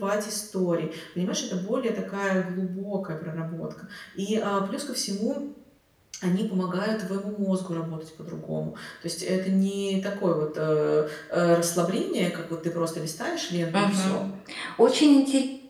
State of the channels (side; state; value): both; identical; correlation 1.00